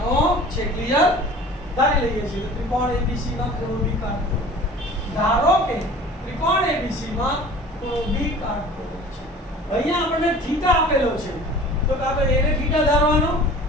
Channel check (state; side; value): normal; both; correlation 0.43